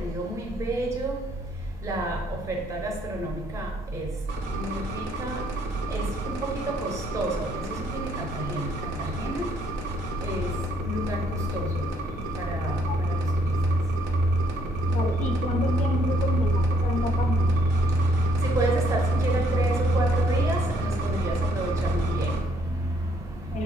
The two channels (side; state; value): both; normal; correlation 0.68